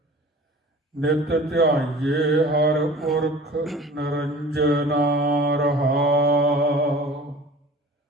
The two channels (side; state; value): both; normal; correlation 0.42